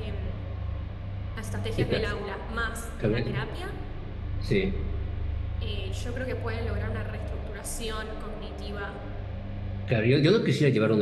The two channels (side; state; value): both; identical; correlation 1.00